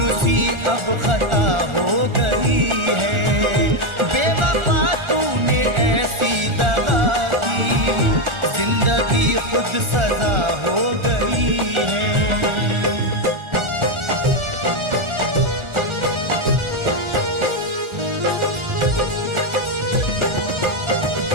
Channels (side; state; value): left; late; 1.4 ms